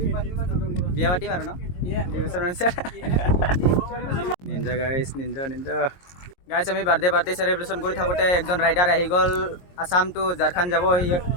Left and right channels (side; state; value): right; late; 22 ms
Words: বিয়া পাতিম আৰু ন নিঞ্জা গাইছ আমি বাৰ্থডে চেলিব্ৰেশ্যন কৰি থাকোঁতে একজন ৰাইডাৰ আহি গ'ল আসাম টু ঝাৰখণ্ড যাব